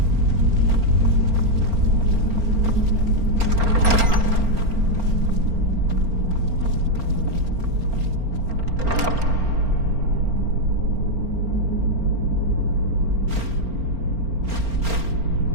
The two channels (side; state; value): left; late; 4.4 ms